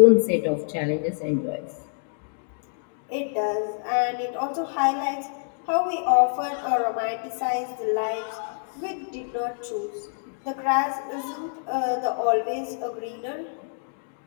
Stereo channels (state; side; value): silent; right; digital silence